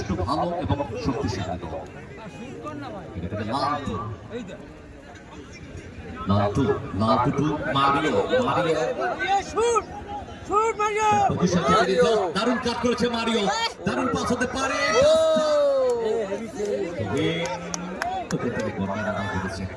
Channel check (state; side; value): identical; both; correlation 1.00